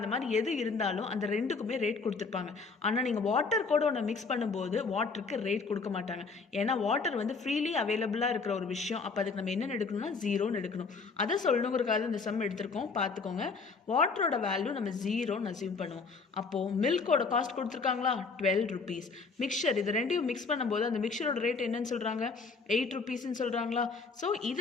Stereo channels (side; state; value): right; quieter; 4.6 dB